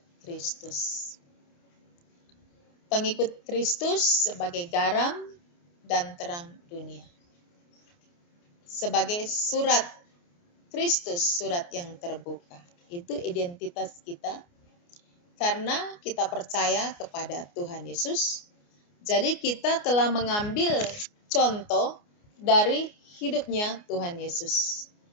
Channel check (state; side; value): late; right; 29 ms